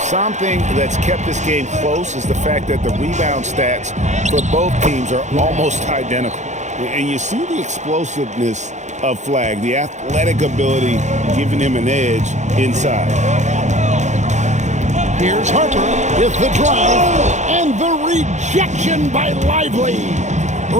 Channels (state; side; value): late; left; 0.34 ms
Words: Something that's kept this game close is the fact that the rebound stats for both teams are almost identical. And you see the explosiveness of Flag, the athletic ability giving him an edge inside. Here's Harper with the drive and the rejection by Lively.